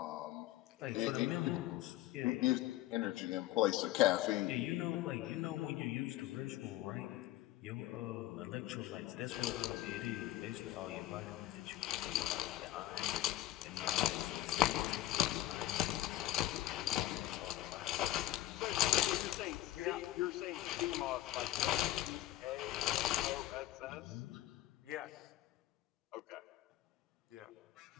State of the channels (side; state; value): right; quieter; 15.0 dB